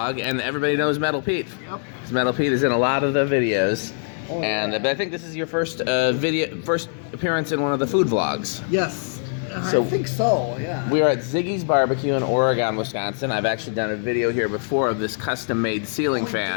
And everybody knows Metal Pete. Yep. Metal Pete is in a lot of the videos. Oh, and but I think this is your first first appearance in one of the food vlogs. Yes. So I think so, yeah. We are at Ziggy's Barbecue in Oregon, Wisconsin. I've actually done a video here before of this custom-made ceiling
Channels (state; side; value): silent; right; 64 dB below the other